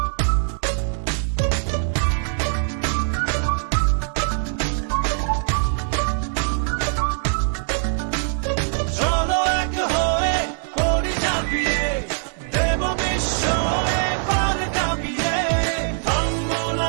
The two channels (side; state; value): left; silent; digital silence